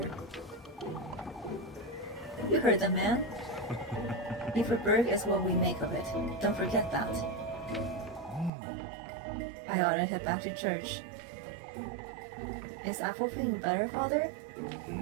You heard the man. Beaverburg is what we make of it. Don't forget that. I ought to head back to church. Is Apple feeling better, Father?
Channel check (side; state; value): left; drops out; at 8.5 s